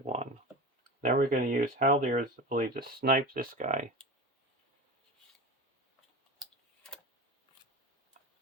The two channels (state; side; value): normal; both; correlation 0.29